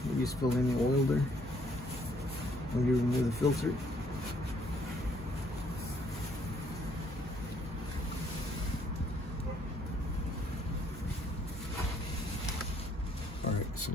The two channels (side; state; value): both; normal; correlation 0.66